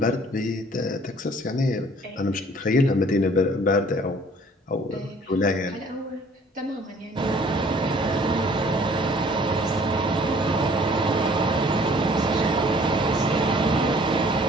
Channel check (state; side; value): normal; both; correlation 0.55